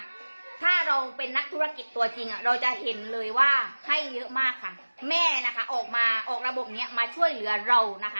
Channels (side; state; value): both; inverted; correlation -1.00